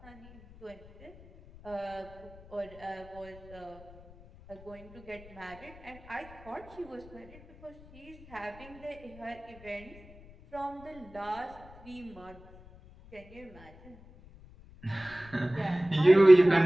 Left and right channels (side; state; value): left; noise; rumble, 21 dB below the sound